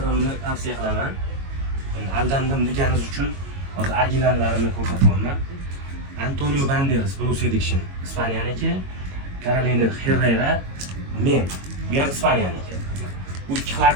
tavsiya qilaman. Aldandim deganingiz uchun hozir originallarini ko'rsatyapman. Antonio Banderas, Bruce Addiction, Ispanyaniki, Carolina Herrera, men, bu ham Ispanyaniki. Bu ikki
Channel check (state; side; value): late; left; 22 ms